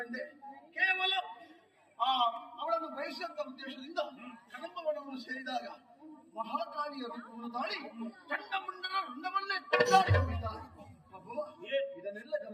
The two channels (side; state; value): both; identical; correlation 1.00